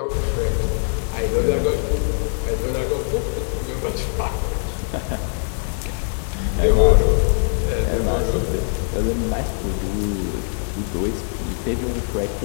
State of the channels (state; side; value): silent; right; digital silence